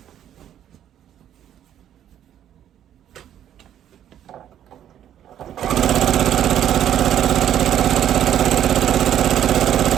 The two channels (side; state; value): left; quieter; 10.6 dB